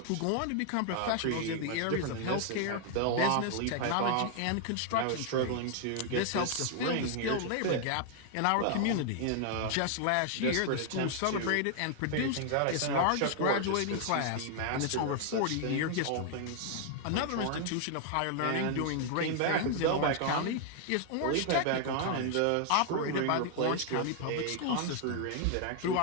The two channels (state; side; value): different; both; correlation 0.00